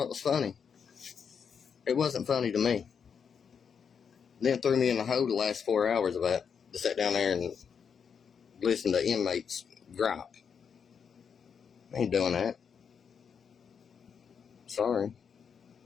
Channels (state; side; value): quieter; right; 6.8 dB